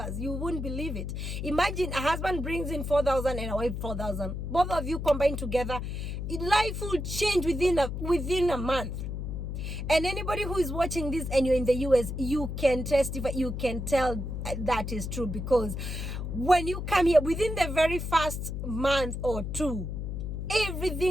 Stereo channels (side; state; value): left; noise; hum, 4 dB below the sound